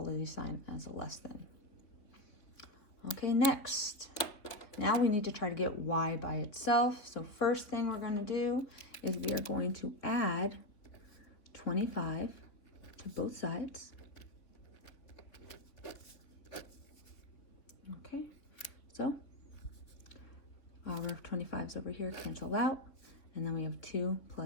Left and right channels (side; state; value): right; late; 3.7 ms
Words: sign as a less than. Okay, next. Now we need to try to get y by itself. So first thing we're going to do is we are going to add 25 to both sides. Okay, so our 25's over here cancel out, and then we have 2